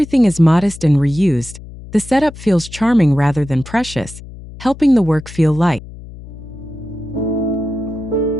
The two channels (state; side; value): noise; left; hum, 15 dB below the sound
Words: is modest and reused, the setup feels charming rather than precious, helping the work feel light.